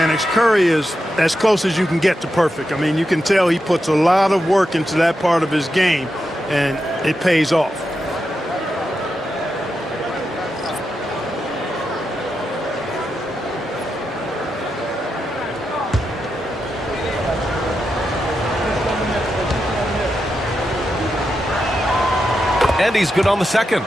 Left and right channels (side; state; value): both; normal; correlation 0.87